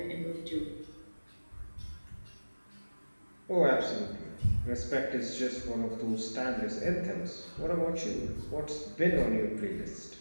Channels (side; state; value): both; inverted; correlation -1.00